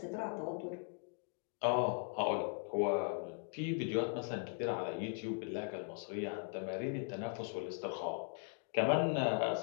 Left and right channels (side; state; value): right; silent; 52 dB below the other